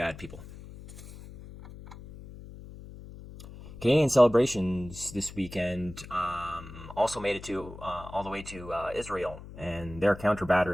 people." Canadian celebrations this weekend also made it to all the way to Israel and their counter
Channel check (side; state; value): left; noise; hum, 15 dB below the sound